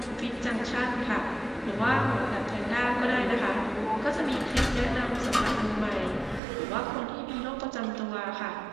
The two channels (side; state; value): left; drops out; at 6.4 s